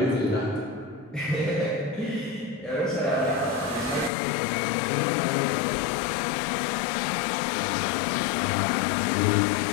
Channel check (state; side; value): drops out; right; at 4.1 s